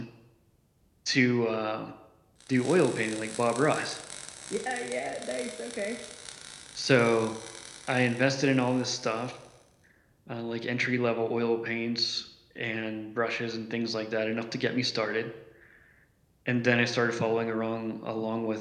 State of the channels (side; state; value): both; identical; correlation 1.00